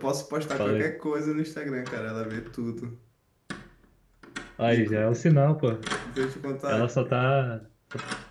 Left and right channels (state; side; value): identical; both; correlation 1.00